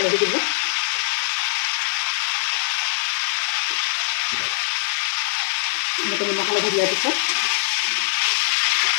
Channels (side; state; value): right; silent; digital silence